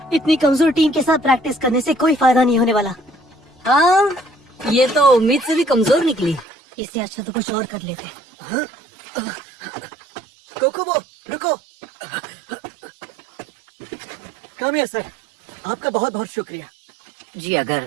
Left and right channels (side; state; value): left; drops out; at 6.5 s